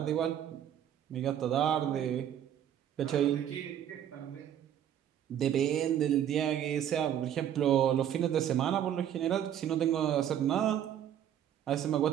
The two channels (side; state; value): left; quieter; 10.2 dB